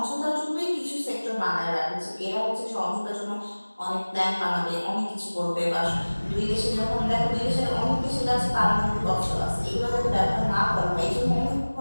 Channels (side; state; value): both; inverted; correlation -1.00